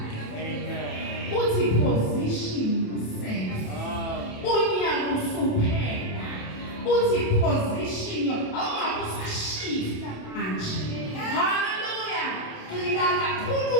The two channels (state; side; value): late; right; 27 ms